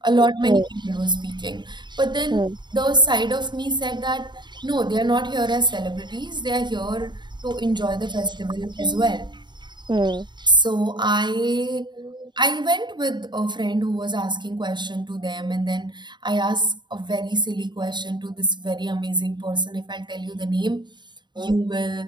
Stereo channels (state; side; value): late; left; 0.22 ms